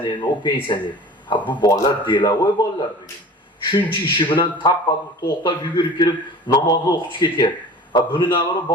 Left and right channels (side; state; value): both; normal; correlation 0.41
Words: u pensioner. Ha bu bolalar delavoy bolalar bugun. Shuncha ishi bilan tappa to'xtab yugurib kirib namozni o'qib ketyapti. Ha buni navara